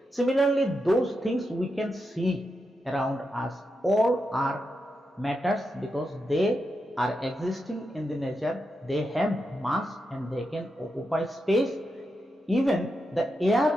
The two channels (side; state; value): both; normal; correlation 0.86